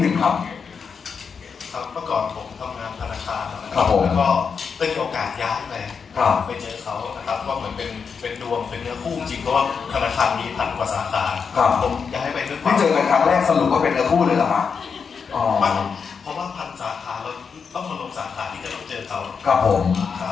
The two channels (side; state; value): right; quieter; 6.0 dB